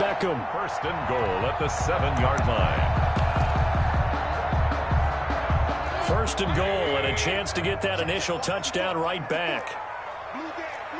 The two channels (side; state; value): both; identical; correlation 1.00